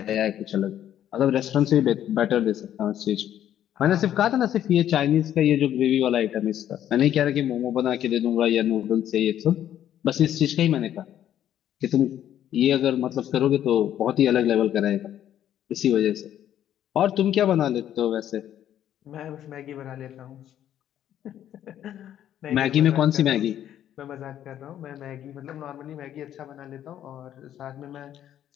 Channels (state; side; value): quieter; right; 11.0 dB